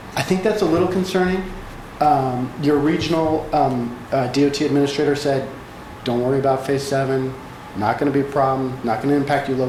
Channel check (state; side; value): identical; both; correlation 1.00